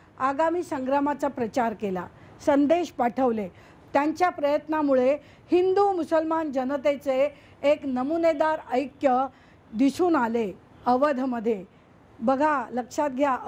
आगामी संग्रामाचा प्रचार केला, संदेश पाठवले. त्यांच्या प्रयत्नामुळे हिंदू मुसलमान जनतेचे एक नमुनेदार ऐक्य दिसून आले अवधमध्ये. बघा, लक्षात घ्या,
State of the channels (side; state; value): both; identical; correlation 1.00